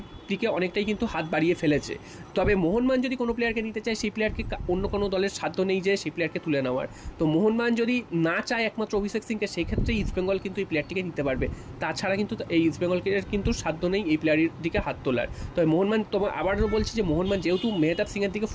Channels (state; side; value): identical; both; correlation 1.00